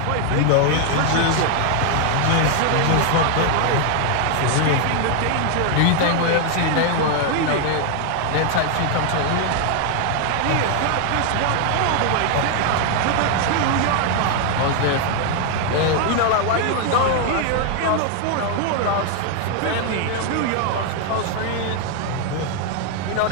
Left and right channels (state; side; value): different; both; correlation 0.00